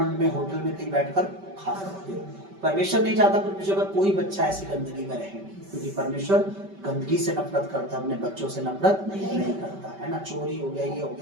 में, होटल में कहीं बैठकर खा सकते हो। परमेश्वर नहीं चाहता परमेश्वर का कोई बच्चा ऐसी गंदगी में रहे, क्योंकि परमेश्वर गंदगी से नफरत करता, अपने बच्चों से नफरत नहीं करता है ना। चोरी हो गया, ये हो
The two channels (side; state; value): left; late; 5.2 ms